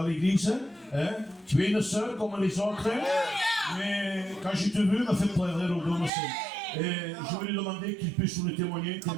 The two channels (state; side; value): drops out; left; at 6.1 s